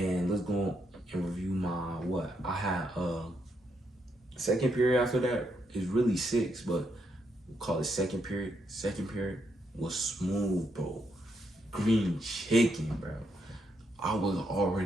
let's go and review my what? I had second period after that is really 6, but we'll call it second period. Second period was smooth, bro. Green chicken, bro. I was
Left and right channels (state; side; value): normal; both; correlation 0.78